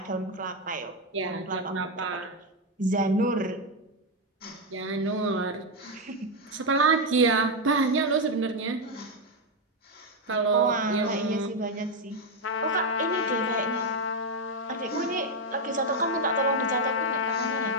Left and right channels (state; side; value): normal; both; correlation 0.05